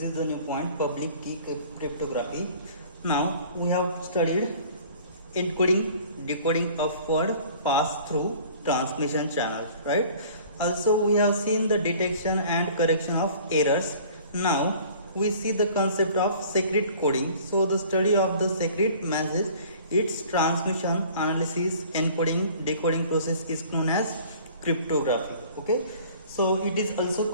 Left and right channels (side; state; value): both; inverted; correlation -0.49